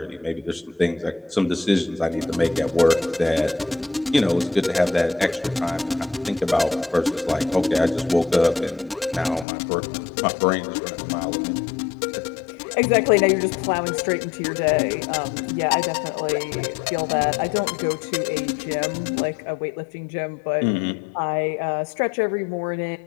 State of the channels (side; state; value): right; drops out; at 9.5 s